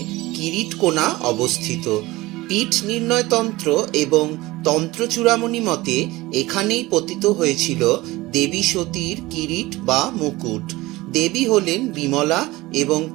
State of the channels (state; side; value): quieter; left; 19.7 dB